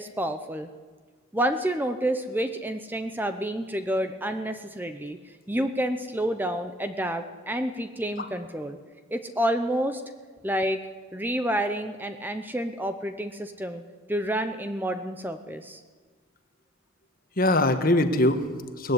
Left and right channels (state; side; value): normal; both; correlation 0.58